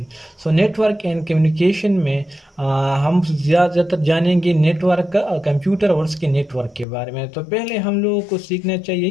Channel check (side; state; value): right; drops out; at 6.9 s